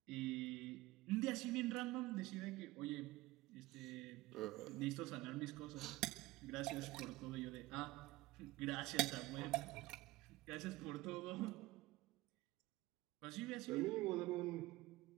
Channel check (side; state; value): left; quieter; 19.2 dB